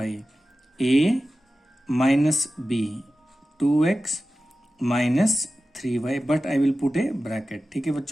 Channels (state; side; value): normal; both; correlation 0.94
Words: a minus b, 2x minus 3y, but I will put A bracket. ठीक है